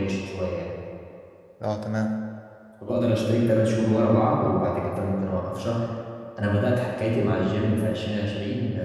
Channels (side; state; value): both; identical; correlation 1.00